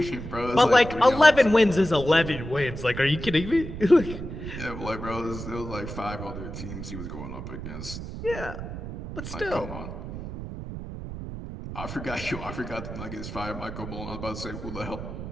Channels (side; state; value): right; noise; rumble, 9 dB below the sound